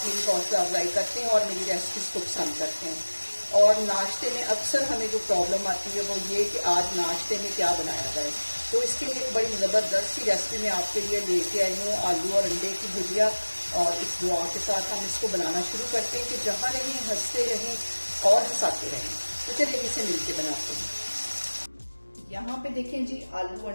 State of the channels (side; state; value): both; inverted; correlation -1.00